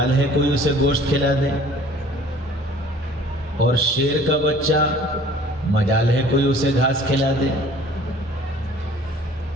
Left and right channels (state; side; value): normal; both; correlation 0.51